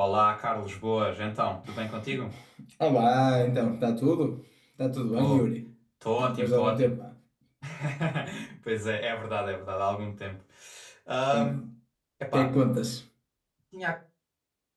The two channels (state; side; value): identical; both; correlation 1.00